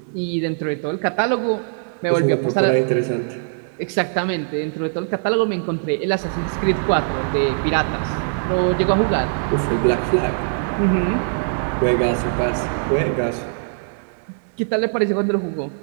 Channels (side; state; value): left; silent; digital silence